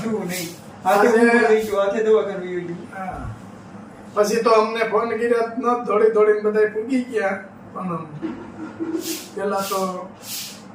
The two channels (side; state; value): both; identical; correlation 1.00